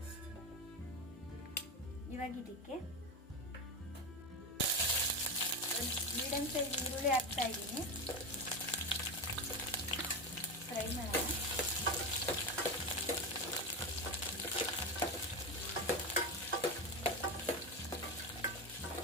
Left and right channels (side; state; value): both; normal; correlation 0.17